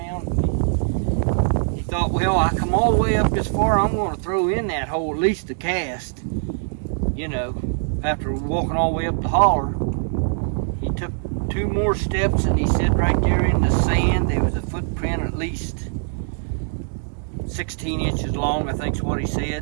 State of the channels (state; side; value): silent; left; digital silence